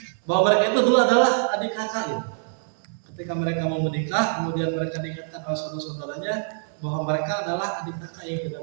bahwa mereka itu dulu adalah adik kakak, gitu. Ketika mereka mau menikah, kemudian mereka diingatkan oleh saudara-saudaranya bahwa mereka adalah adik kakak yang tidak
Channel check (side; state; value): left; silent; digital silence